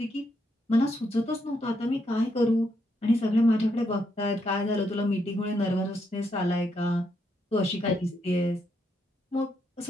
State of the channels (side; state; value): both; normal; correlation 0.78